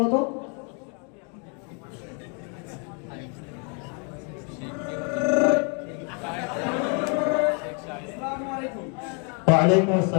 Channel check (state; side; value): quieter; right; 37.5 dB